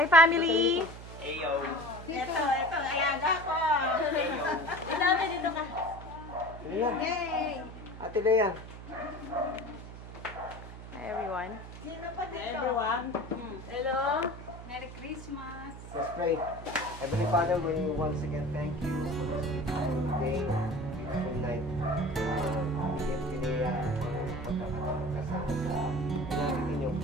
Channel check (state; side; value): noise; right; hum, 13 dB below the sound